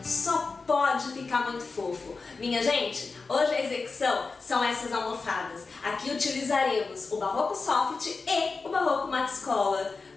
só pode ficar muito fofo. Minha gente, hoje a execução são essas almofadas. Aqui utilizaremos o barroco soft e o barroco Max Collar.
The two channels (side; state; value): right; quieter; 4.3 dB